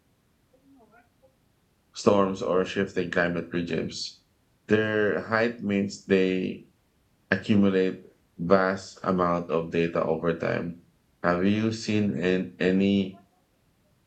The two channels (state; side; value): identical; both; correlation 1.00